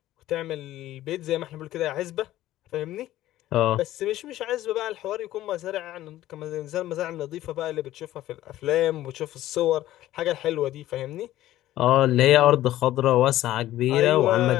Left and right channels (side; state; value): right; quieter; 14.5 dB